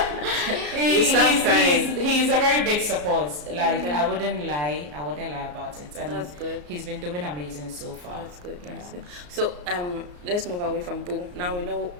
He's a very big support. Like I wouldn't lie about it. And that's good. He's been doing amazing so far. That's good. Yeah. That's good. So let's move away from Boo. Now we know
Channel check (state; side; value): late; left; 34 ms